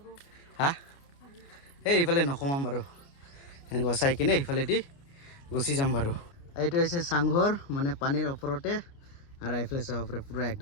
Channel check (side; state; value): right; late; 29 ms